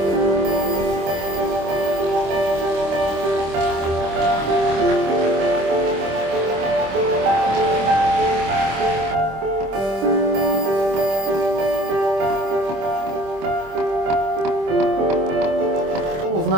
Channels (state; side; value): late; left; 26 ms